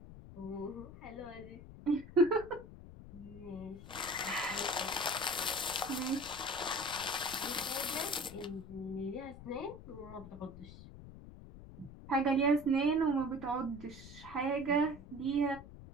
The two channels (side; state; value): left; noise; rumble, 15 dB below the sound